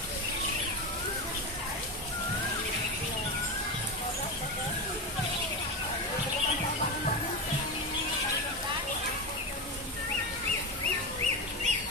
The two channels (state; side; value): normal; both; correlation 0.17